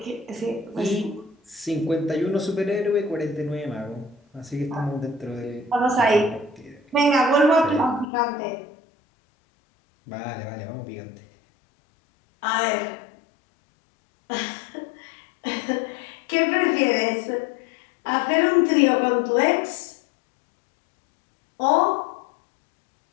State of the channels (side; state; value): right; drops out; at 8.1 s